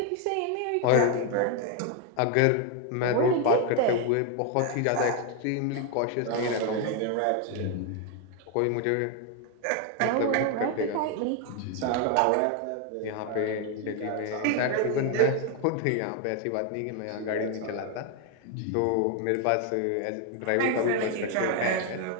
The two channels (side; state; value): both; different; correlation 0.01